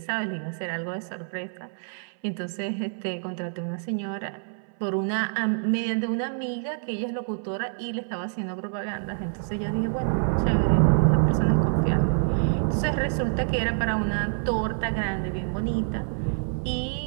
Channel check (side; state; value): left; silent; 60 dB below the other